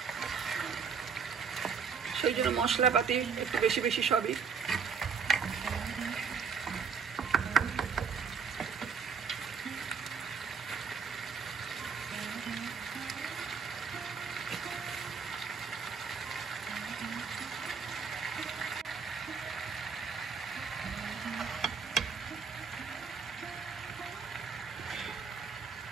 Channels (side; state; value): left; quieter; 5.9 dB